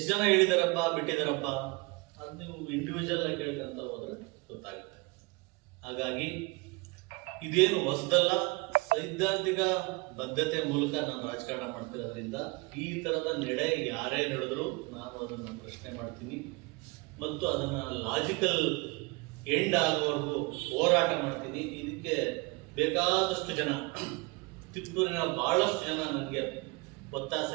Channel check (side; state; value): left; quieter; 26.2 dB